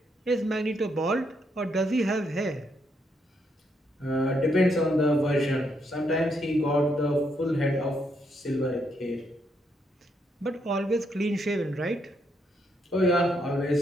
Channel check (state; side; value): normal; both; correlation 0.76